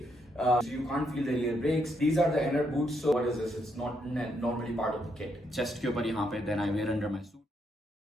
So you can't feel the rear brakes. These are the inner boots. So what is this? It's not normally part of the kit. Chest के ऊपर यहाँ पे then I wear under my suit.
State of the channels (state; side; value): normal; both; correlation 0.77